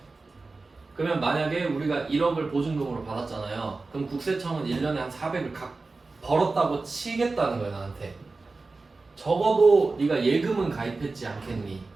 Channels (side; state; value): left; quieter; 3.7 dB